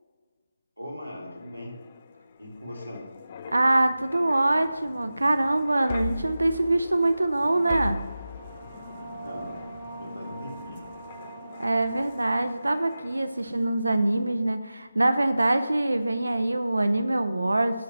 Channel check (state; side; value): inverted; both; correlation -0.95